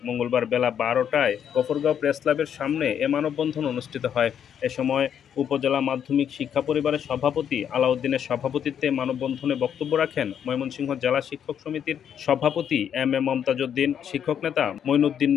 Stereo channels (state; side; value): quieter; right; 8.7 dB